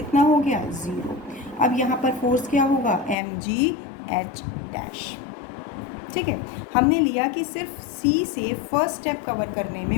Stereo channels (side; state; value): right; drops out; at 3.2 s